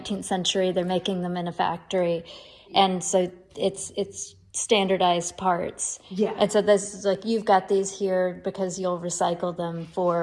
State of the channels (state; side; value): identical; both; correlation 1.00